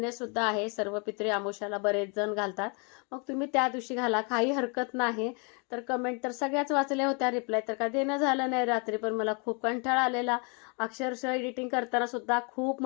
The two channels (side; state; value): right; quieter; 34.6 dB